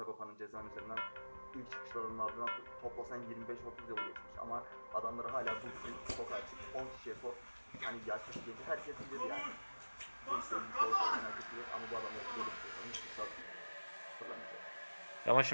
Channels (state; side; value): inverted; both; correlation -1.00